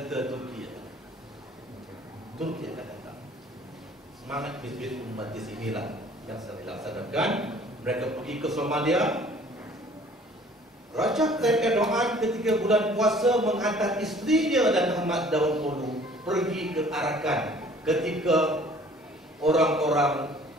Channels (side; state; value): both; normal; correlation 0.53